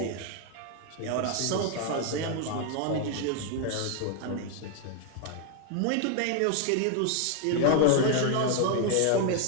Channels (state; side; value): different; both; correlation 0.00